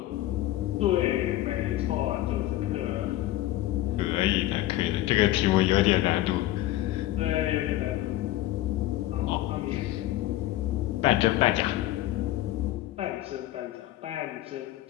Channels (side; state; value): right; quieter; 15.4 dB